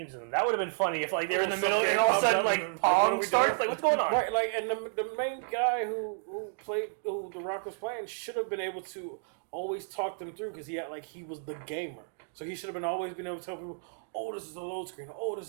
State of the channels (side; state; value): left; silent; digital silence